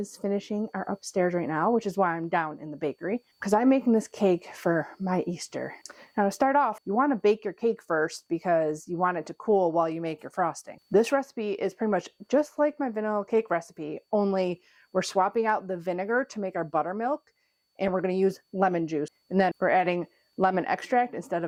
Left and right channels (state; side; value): identical; both; correlation 1.00